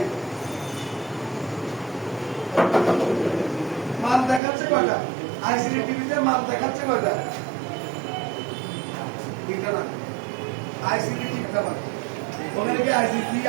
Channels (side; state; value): left; drops out; at 4.4 s